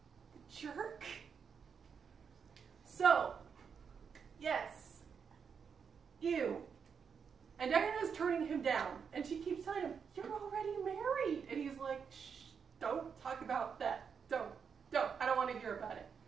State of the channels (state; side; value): quieter; left; 6.6 dB